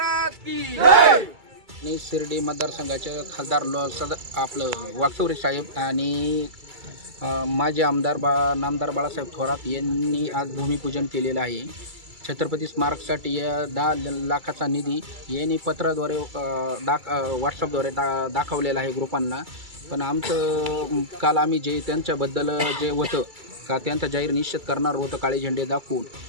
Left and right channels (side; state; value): left; late; 2.3 ms